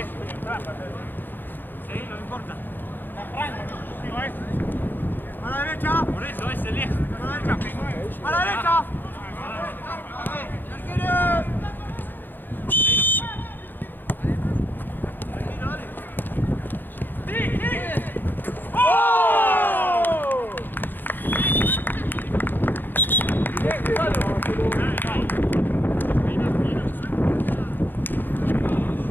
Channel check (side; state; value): right; late; 0.091 ms